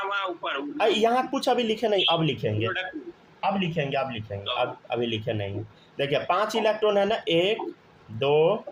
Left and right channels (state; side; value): identical; both; correlation 1.00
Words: ऊपर यहाँ कुछ अभी लिखे नहीं, अब लिखेंगे, अब लिखेंगे, अभी लिखे नहीं। देखिए 5 इलेक्ट्रॉन है ना, 1 2